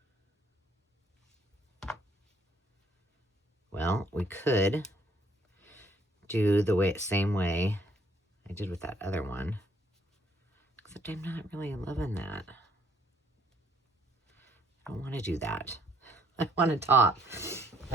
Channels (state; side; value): normal; both; correlation 0.64